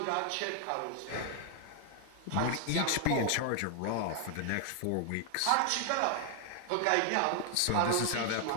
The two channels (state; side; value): different; both; correlation 0.00